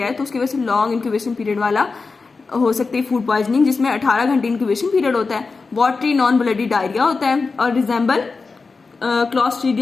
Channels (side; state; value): right; quieter; 4.3 dB